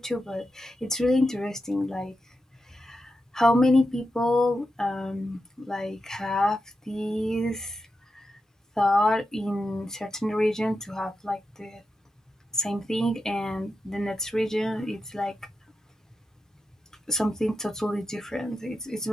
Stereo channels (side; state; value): both; normal; correlation 0.89